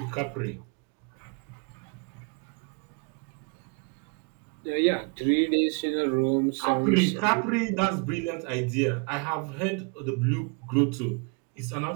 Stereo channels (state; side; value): quieter; left; 33.8 dB